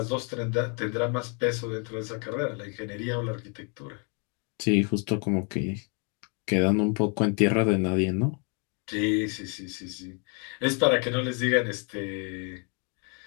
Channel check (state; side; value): quieter; right; 37.6 dB